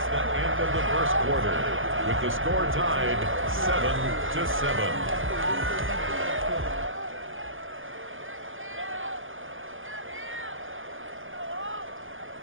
the end of the first quarter, with the score tied 7-7.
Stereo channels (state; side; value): late; left; 0.58 ms